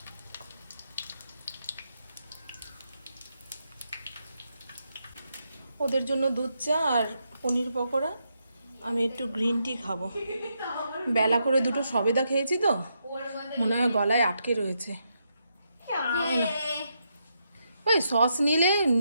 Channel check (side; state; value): both; inverted; correlation -0.81